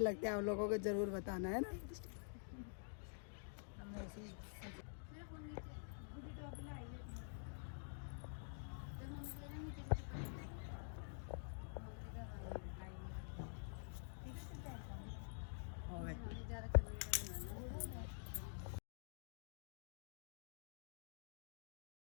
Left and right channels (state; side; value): silent; right; digital silence